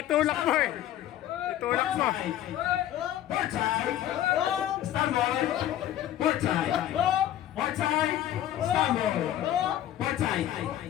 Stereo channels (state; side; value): quieter; right; 12.2 dB